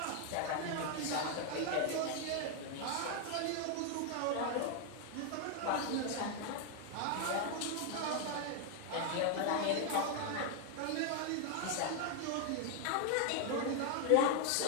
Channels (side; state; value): both; different; correlation 0.00